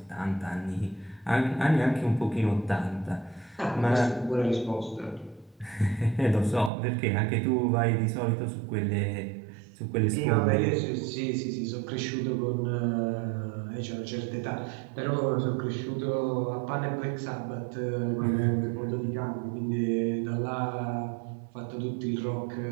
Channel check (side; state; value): left; drops out; at 6.7 s